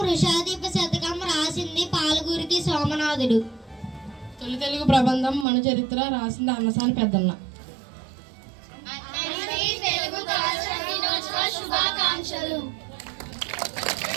వృషాదీప శతకం రాసింది పాలగురికి సోమనాథుడు. తొలి తెలుగు ప్రబంధం మన చరిత్ర రాసింది అన్నసాని పెద్దన్న. తెలుగు భాష దినోత్సవ శుభాకాంక్షలు.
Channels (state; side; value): drops out; left; at 5.5 s